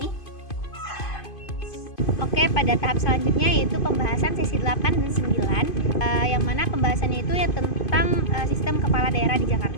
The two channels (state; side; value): late; right; 2.5 ms